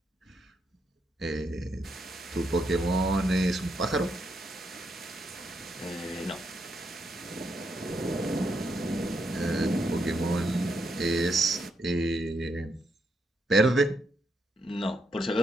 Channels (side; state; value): both; normal; correlation 0.79